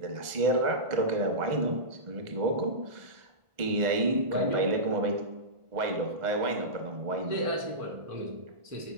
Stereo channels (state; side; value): late; left; 1.5 ms